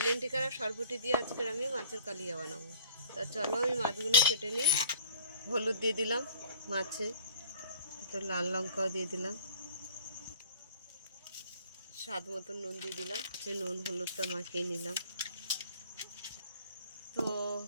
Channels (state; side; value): inverted; both; correlation -0.51